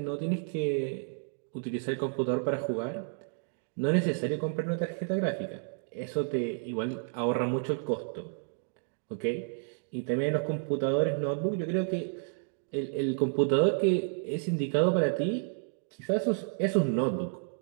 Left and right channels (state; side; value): silent; left; 57 dB below the other